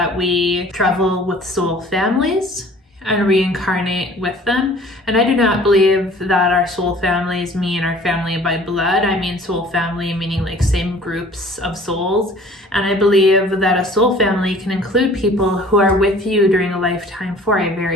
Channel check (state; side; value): normal; both; correlation 0.50